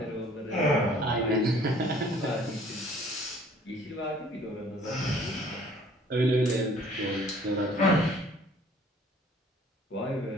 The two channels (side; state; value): both; normal; correlation 0.55